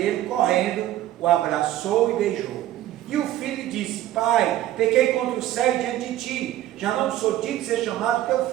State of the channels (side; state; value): left; quieter; 13.6 dB